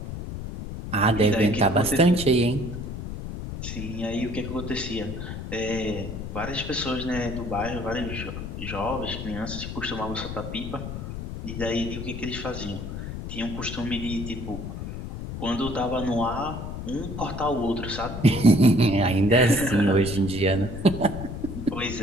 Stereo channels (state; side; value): noise; left; rumble, 7 dB below the sound